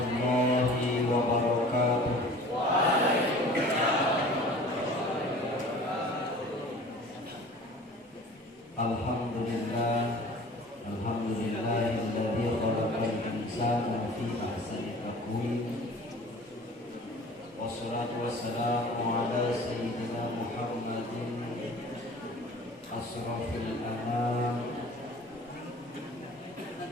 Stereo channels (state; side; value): normal; both; correlation 0.45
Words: wabarakatuh. Alhamdulillah, alhamdulillahilladzi khalaqal insana fi ahsani taqwim. Wassalatu wassalamu ala sayyidina Muhammadin asrafil anam